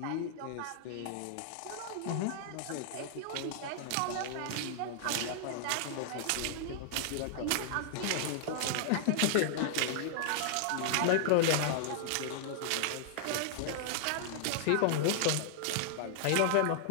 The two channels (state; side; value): different; both; correlation 0.00